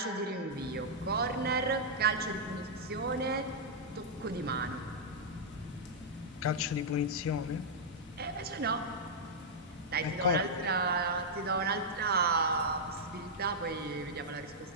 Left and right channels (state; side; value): normal; both; correlation -0.07